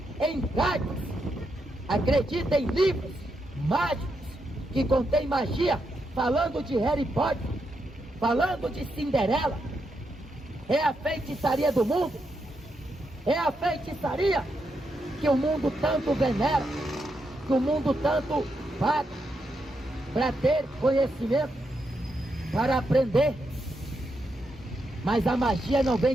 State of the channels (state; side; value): normal; both; correlation 0.82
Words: em cartas, acredita em livros mágicos que contém magia, falando de Harry Potter, falando de Cinderela. É a feitiçaria do mundo, é a feitiçaria que o mundo tanto venera, que o mundo tanto paga para ter conhecimento, para aprender. Mas a magia não vem